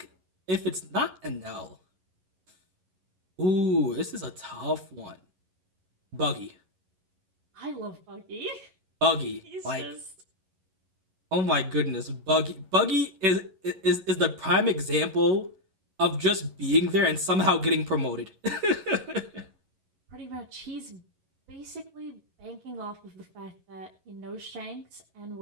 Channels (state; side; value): late; left; 11 ms